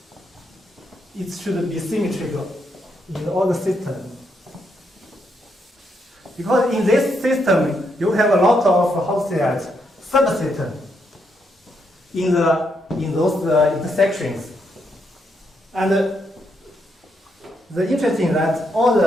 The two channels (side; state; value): both; normal; correlation 0.78